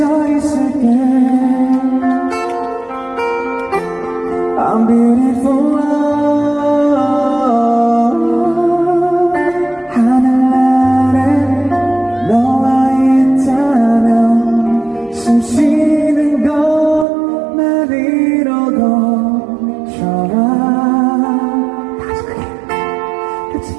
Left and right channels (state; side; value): drops out; left; at 17.1 s